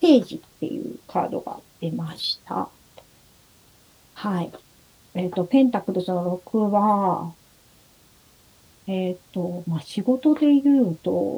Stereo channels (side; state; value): both; identical; correlation 1.00